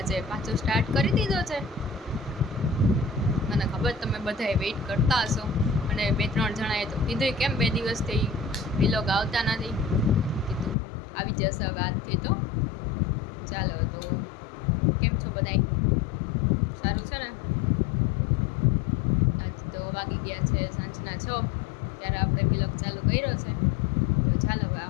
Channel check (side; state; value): right; drops out; at 10.8 s